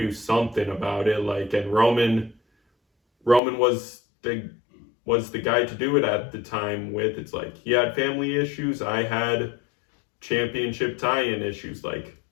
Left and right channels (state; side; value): drops out; right; at 3.4 s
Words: something about it. Like, and Roman was the guy to do it at the time with. It's like, he had family issues. I had championship tie-in issues. Like,